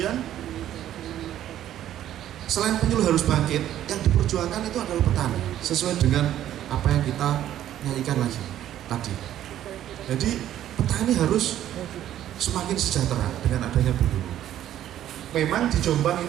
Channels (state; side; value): quieter; left; 11.9 dB